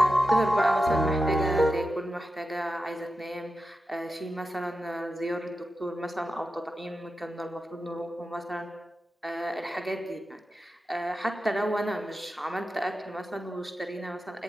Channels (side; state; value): both; normal; correlation 0.91